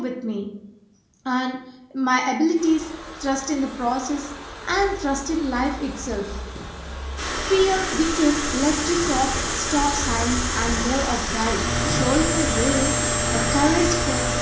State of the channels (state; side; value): identical; both; correlation 1.00